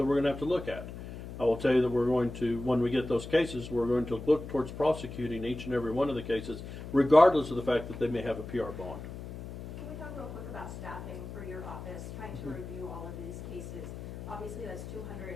we're going to have to look at. I will tell you that we're going to, when we get those cases, we're going to look towards prosecuting each and every one of the cases, regardless of the fact that they may have a PR bond. Can we talk real quick about staffing for your office, trying to review all of these cases? Obviously, that's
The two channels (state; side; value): noise; left; hum, 10 dB below the sound